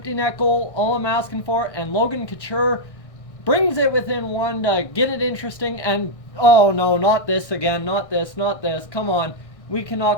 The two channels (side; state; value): right; late; 1.6 ms